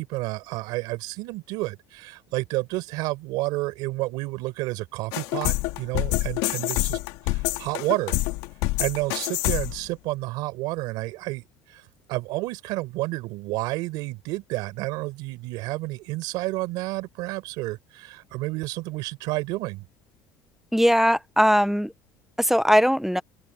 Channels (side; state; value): both; normal; correlation 0.51